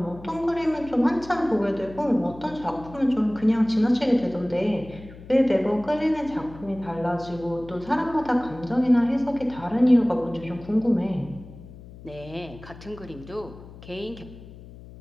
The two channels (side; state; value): left; noise; hum, 17 dB below the sound